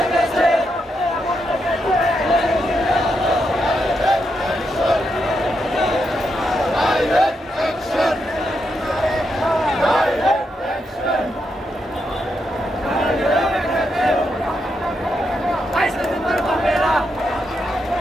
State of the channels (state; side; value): normal; both; correlation 0.82